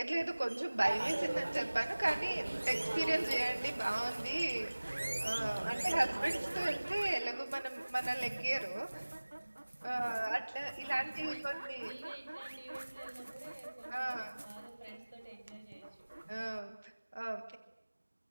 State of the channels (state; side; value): inverted; both; correlation -1.00